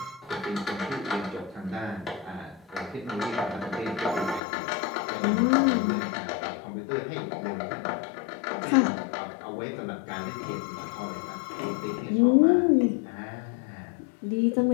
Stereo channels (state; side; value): drops out; right; at 4.4 s